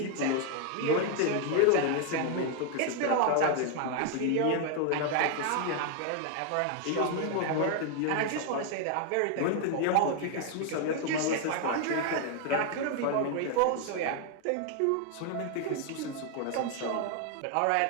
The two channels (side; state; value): both; different; correlation 0.01